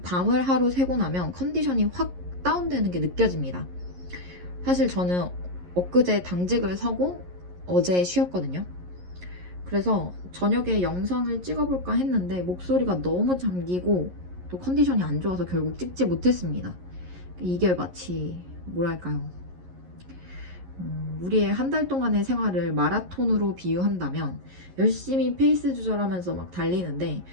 밤을 하루 새고 나면 컨디션이 확 다운되는 게 느껴집니다. 사실 저는 엊그제 당직을 서고 어제 쉬었거든요. 그래서 저녁에 영상을 찍어볼까 했는데 목소리가 너무 잠기고 또 컨디션이 안 좋아서 결국 찍지 못했습니다. 이게 마치 뭐랄까요, 우리의 한 달 동안의 생활을 마라톤으로 비유한다면 열심히 페이스 조절하면서 막 달리는데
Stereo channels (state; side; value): late; left; 11 ms